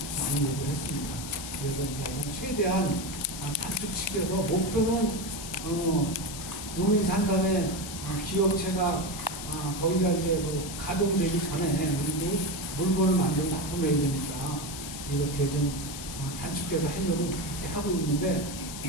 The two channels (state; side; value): noise; left; hiss, 9 dB below the sound